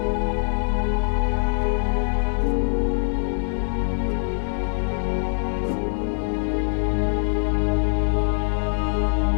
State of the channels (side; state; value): right; silent; digital silence